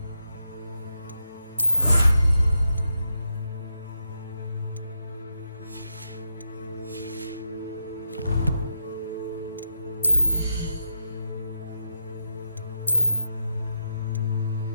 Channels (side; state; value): both; inverted; correlation -0.85